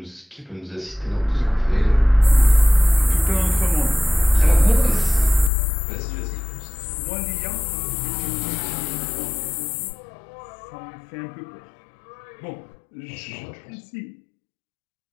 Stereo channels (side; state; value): right; drops out; at 5.5 s